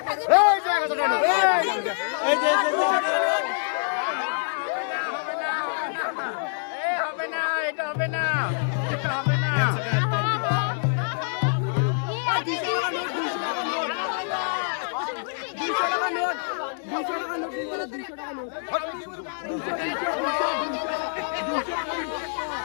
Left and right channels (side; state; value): right; silent; digital silence